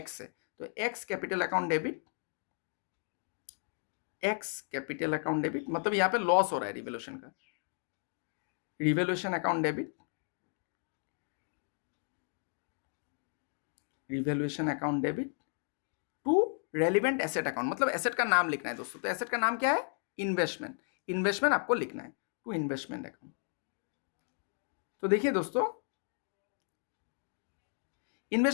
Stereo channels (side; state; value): right; silent; 55 dB below the other